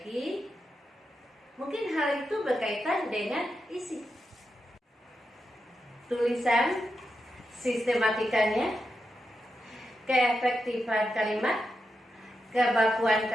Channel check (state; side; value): normal; both; correlation 0.87